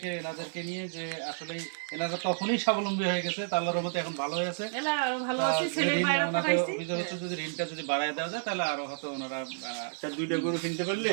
এনাদেরকে নিয়ে, যে আসলে এনারা তখনই স্বাবলম্বী হয়ে গেছে, তা আল্লাহর রহমতে এখন ভালো হয়ে আছে। এলা আরো ভালো আছি, ছেলে ঋণ বাইরে ওনাদের পাঠাইছি। অভিযোগ হচ্ছে যদি ঋণটা যদি বাড়ায় দেওয়া যায়, তাহলে আরো হয়তো ওনারা 2টা গরু কিনতে পারলে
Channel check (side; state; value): left; silent; 57 dB below the other